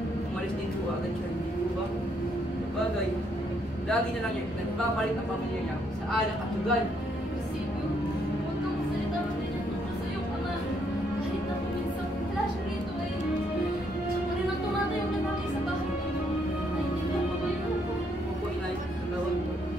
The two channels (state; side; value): normal; both; correlation 0.72